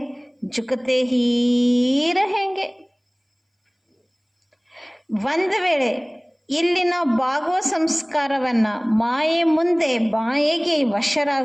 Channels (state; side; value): identical; both; correlation 1.00